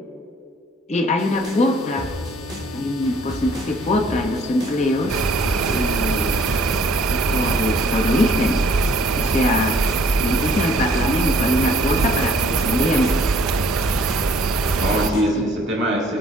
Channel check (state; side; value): normal; both; correlation 0.59